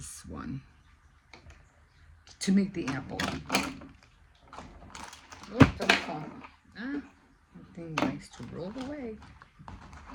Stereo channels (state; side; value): identical; both; correlation 1.00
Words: one to make the apple. Oh, don't fall. Ah, that thing likes to roll away.